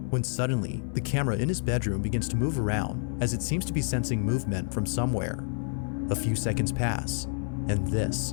when suddenly the camera in his bedroom begins to move around as it seems to be sensing movement from somewhere. A few seconds pass, and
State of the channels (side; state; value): right; silent; 59 dB below the other